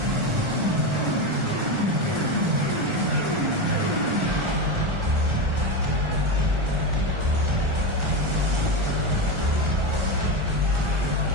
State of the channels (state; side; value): late; left; 1.4 ms